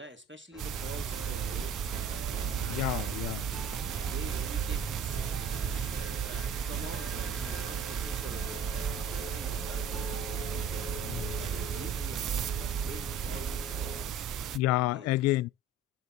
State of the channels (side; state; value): both; normal; correlation 0.43